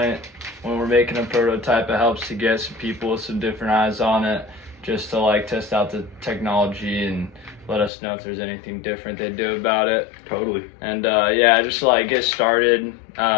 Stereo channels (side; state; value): right; drops out; at 7.9 s